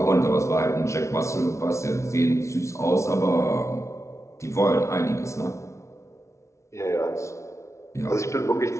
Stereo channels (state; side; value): late; right; 0.14 ms